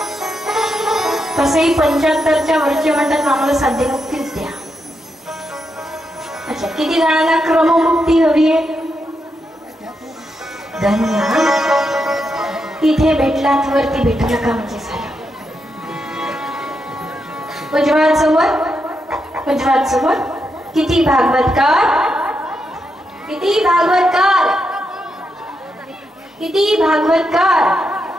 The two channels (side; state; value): both; normal; correlation 0.83